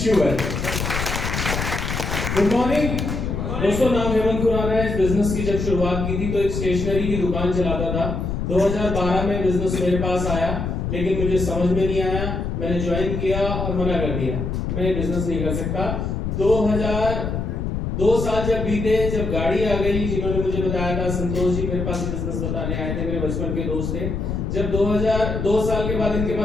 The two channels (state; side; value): noise; left; rumble, 2 dB below the sound